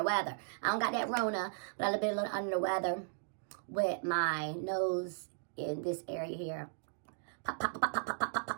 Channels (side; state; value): left; silent; digital silence